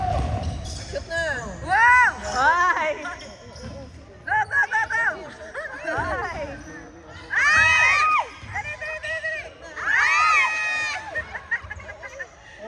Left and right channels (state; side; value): identical; both; correlation 1.00